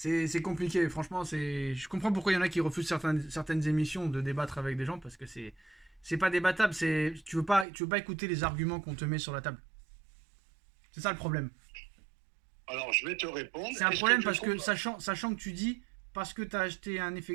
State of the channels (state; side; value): drops out; left; at 7.7 s